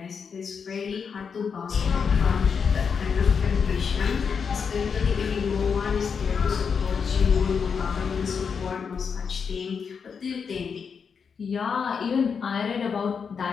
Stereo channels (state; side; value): quieter; right; 6.2 dB